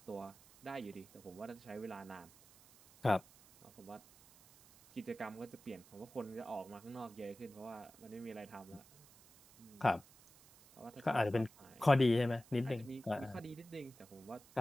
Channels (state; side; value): noise; right; hiss, 23 dB below the sound